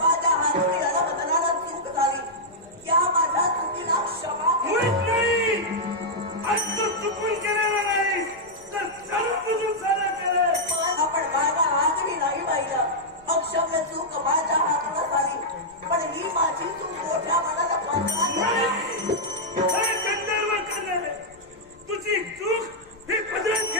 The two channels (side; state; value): left; noise; rumble, 29 dB below the sound